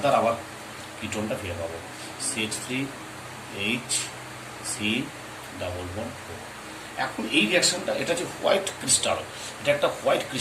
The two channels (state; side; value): identical; both; correlation 1.00